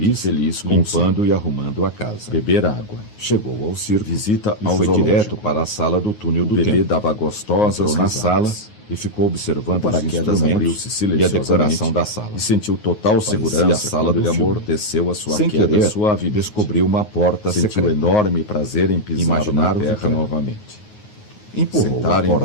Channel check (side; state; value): right; late; 9.5 ms